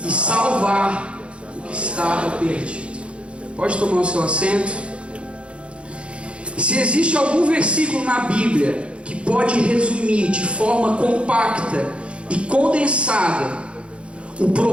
e salvar o que estava perdido. Pode tomar o seu assento. Se existe algum versículo na Bíblia que pode resumir de forma compacta e condensada o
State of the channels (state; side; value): late; left; 0.059 ms